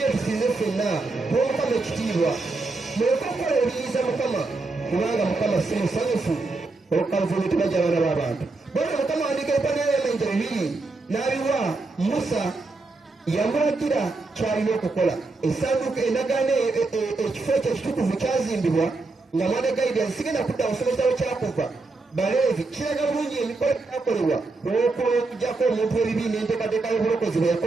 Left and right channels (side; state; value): left; quieter; 3.5 dB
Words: tusinze ffenna tuwa Mukama ekitiibwa, muleke okukola ebiyiza Mukama kubanga Mukama si musanyufu olw'okukaluvumu tebajja abaana b'abantu. Bwatyo Mukama awandiika ebipande by'amayinja 2 n'abiwa Musa, yamulagira kyalina okukola. Essanduuko endagaano ekifo ekyo ekitukuvu kyazimbibwa nga mwana Gaidi sigenda kudda musomesa we Kyakuva Baleevi. Kiraga bulungi emikolo gyakolebwa olw'okujjako omuntu w'ebibi n'enteekateeka y'obulokozi bwe